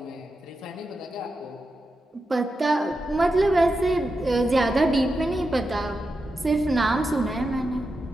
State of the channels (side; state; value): both; normal; correlation 0.89